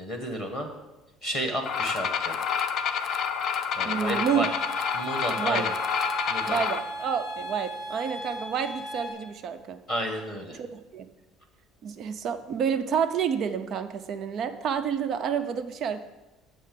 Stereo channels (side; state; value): both; normal; correlation 0.49